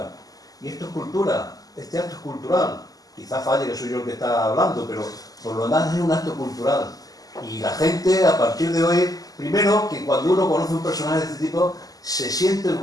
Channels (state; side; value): late; right; 0.17 ms